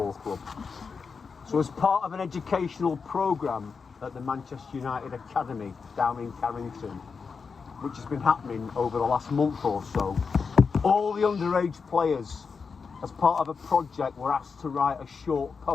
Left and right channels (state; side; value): quieter; right; 5.3 dB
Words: club. So as part of an educational programme at the Manchester United Academy down in Carrington, which has been happening over the last month or so, all the underage players, as part of a project, were asked to write a short